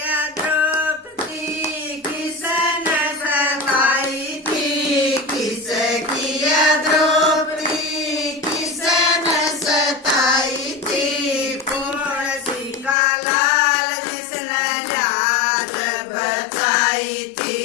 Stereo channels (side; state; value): right; drops out; at 13.0 s